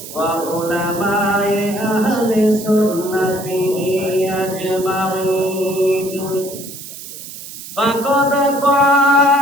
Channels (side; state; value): right; noise; hiss, 13 dB below the sound